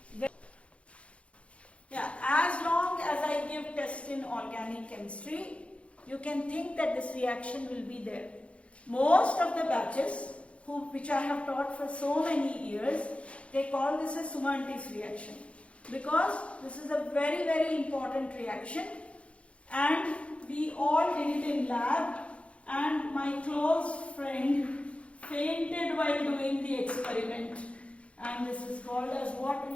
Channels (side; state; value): right; late; 0.061 ms